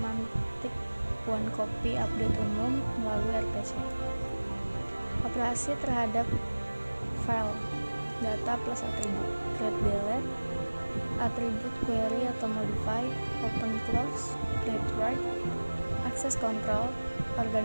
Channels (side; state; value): both; inverted; correlation -1.00